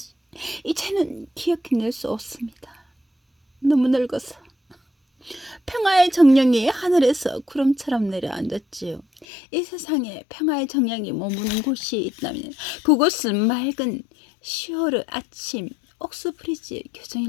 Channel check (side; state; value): right; drops out; at 9.2 s